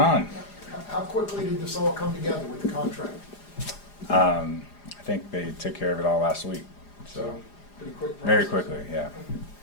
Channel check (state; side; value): late; right; 4.9 ms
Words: How quickly did this all come together with the contract? I think they took care of it all last week, so Pretty quick process. very quickly, yeah.